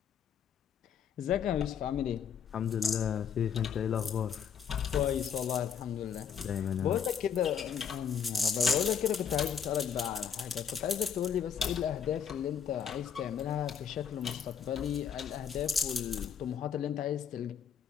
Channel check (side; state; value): right; quieter; 7.7 dB